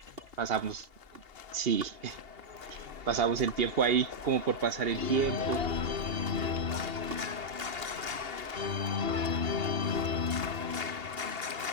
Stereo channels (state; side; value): late; left; 2.8 ms